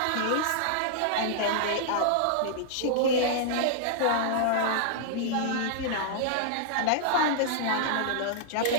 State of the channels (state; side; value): different; both; correlation -0.01